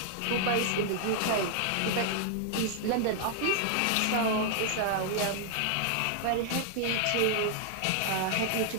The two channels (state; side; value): different; both; correlation -0.01